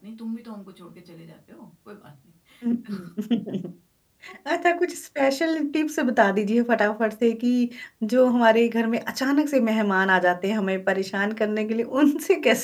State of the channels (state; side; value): identical; both; correlation 1.00